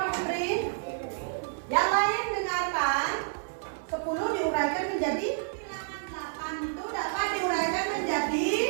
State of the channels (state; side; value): silent; left; 55 dB below the other